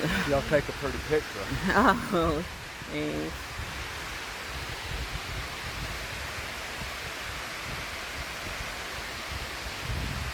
Y'all take a pretty picture. Oh, thanks.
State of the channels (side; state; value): both; identical; correlation 1.00